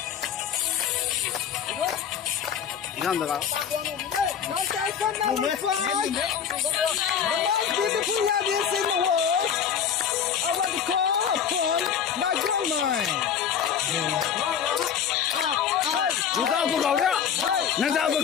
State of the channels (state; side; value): quieter; right; 8.2 dB